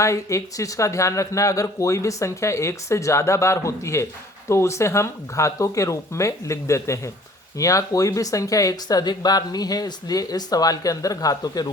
एक चीज़ का ध्यान रखना है, अगर कोई भी संख्या 1 से ज़्यादा बार होती है तो उसे हम घातों के रूप में लिख देते हैं। यहाँ कोई भी संख्या 1 से अधिक बार नहीं है, इसलिए इस सवाल के अंदर घातों के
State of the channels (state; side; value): normal; both; correlation 0.52